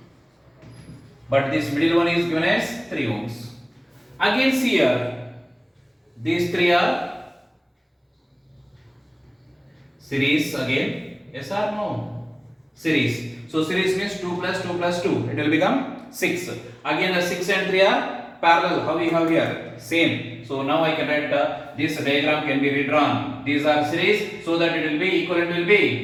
But this middle one is given as 3 ohms. Again see here. These three are series again. Yes or no? Series. So series means 2 plus 2 plus 2. It will become 6. Again the 6 and 3 are parallel. How we have here? Same. So now I can write this diagram can be redrawn. These are series, so that it will be equivalent will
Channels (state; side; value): identical; both; correlation 1.00